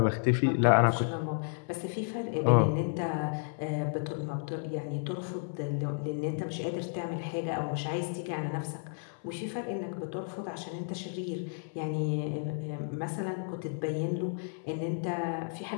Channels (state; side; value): silent; right; 56 dB below the other